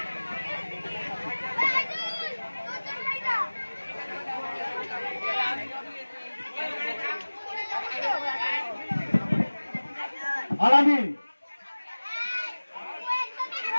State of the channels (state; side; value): inverted; both; correlation -1.00